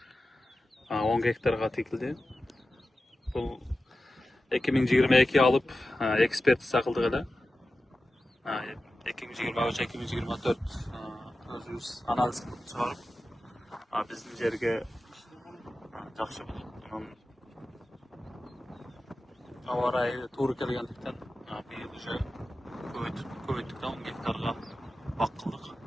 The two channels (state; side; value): normal; both; correlation 0.93